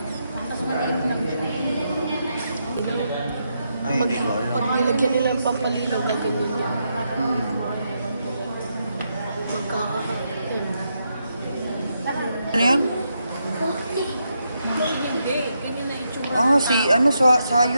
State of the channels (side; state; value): both; inverted; correlation -0.82